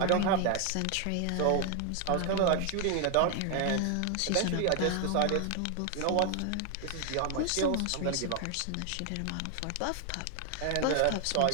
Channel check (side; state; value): both; different; correlation 0.00